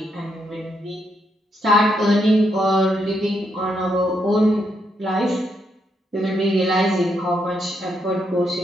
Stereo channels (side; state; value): both; normal; correlation 0.78